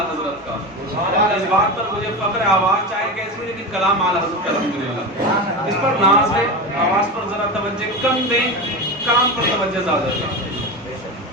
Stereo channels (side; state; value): both; normal; correlation 0.23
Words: حضرت کا، اس بات پر مجھے فخر ہے، آواز چاہے کیسی ہے لیکن کلام اعلی حضرت کا الحمدللہ، اس پر ناز ہے۔ آواز پر ذرا توجہ کم دیں، کام پر توجہ زیادہ دیں۔